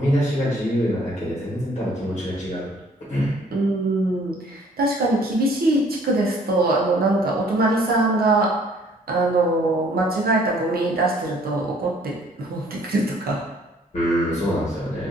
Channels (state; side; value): normal; both; correlation 0.59